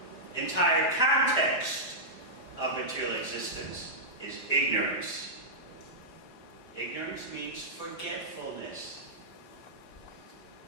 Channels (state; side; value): late; right; 4.8 ms